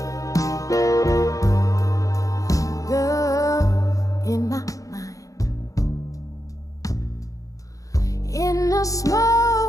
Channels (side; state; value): right; late; 0.16 ms